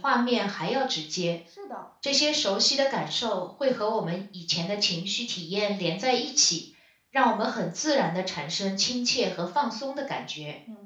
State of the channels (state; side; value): identical; both; correlation 1.00